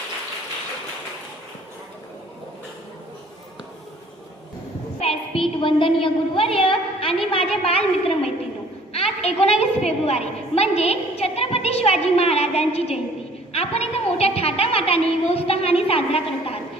व्यासपीठ, वंदनीय गुरुवर्य आणि माझे बालमित्र मैत्रिणी, आज 19 फेब्रुवारी म्हणजे छत्रपती शिवाजी महाराजांची जयंती. आपण इथं मोठ्या थाटामाटाने व उत्साहाने साजरा करत आहात.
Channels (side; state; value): both; normal; correlation 0.55